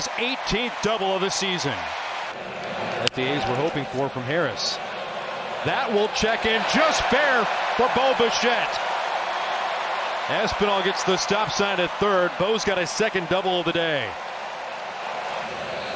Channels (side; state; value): both; identical; correlation 1.00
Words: 18th double of the season. That the A's were hoping for from Harris. That will check in just fair for Bo Bichette. Espinal gets the stop sign at third. Bo's got his second double of the day.